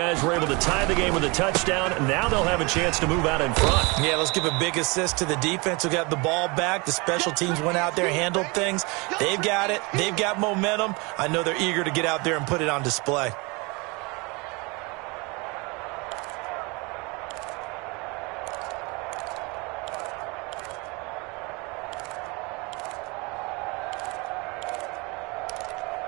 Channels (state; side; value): quieter; left; 27.7 dB